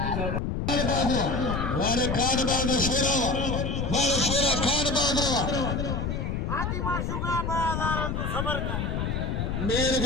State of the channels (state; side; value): noise; left; rumble, 1 dB below the sound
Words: वाले खान बाग शेरा खान बाग हाजी माशूका बड़ा तू सबर कर मेर